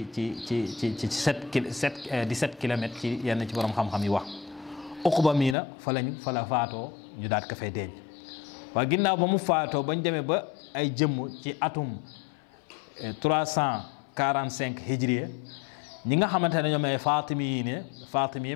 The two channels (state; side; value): drops out; right; at 5.6 s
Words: kilomètres ci yenn ci borom xam-xam yi wax. Uqba mii na fa la faatoo ñu daat ko fay denc waaye ginnaaw ba mu faatoo bañ demee ba ay jëmm ci atum 345 hijriya ñi nga xamante ne ñoom ay Faatimi yi